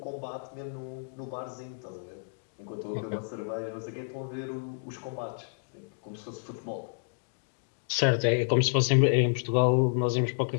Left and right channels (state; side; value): silent; right; digital silence